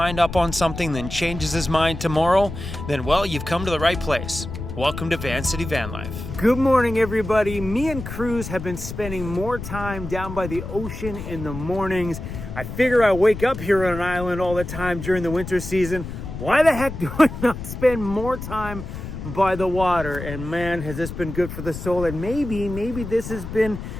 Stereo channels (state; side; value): noise; left; rumble, 8 dB below the sound